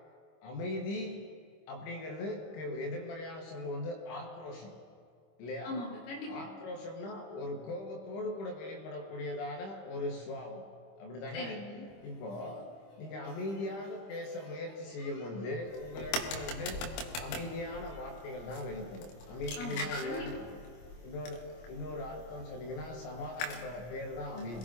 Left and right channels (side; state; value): right; late; 25 ms